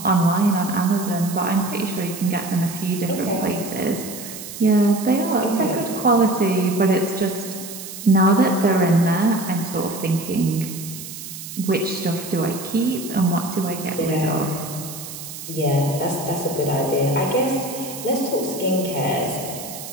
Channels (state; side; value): noise; right; hiss, 11 dB below the sound